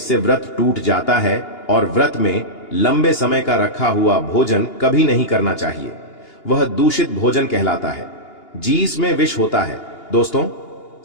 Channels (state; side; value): late; right; 2.8 ms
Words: व्रत टूट जाता है। और व्रत में लंबे समय का रखा हुआ भोजन कभी नहीं करना चाहिए, वह दूषित भोजन कहलाता है। जीस में विष होता है। दोस्तों,